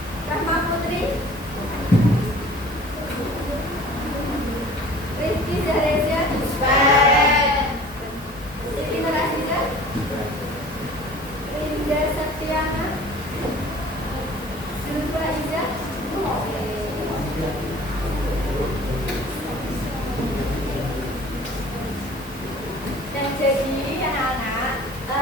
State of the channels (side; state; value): both; normal; correlation 0.46